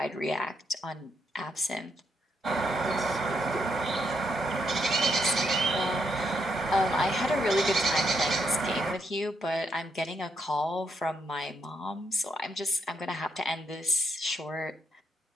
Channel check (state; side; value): normal; both; correlation 0.77